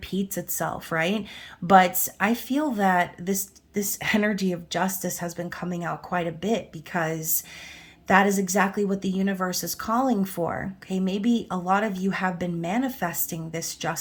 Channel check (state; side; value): identical; both; correlation 1.00